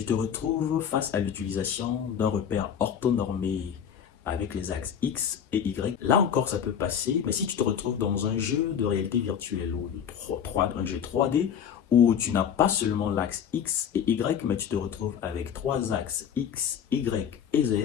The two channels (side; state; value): right; quieter; 8.3 dB